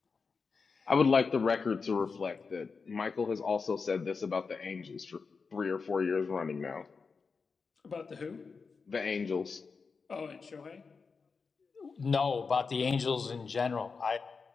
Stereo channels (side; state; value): right; quieter; 5.0 dB